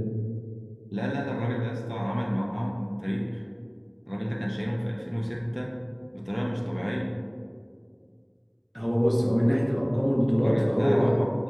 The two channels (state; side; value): identical; both; correlation 1.00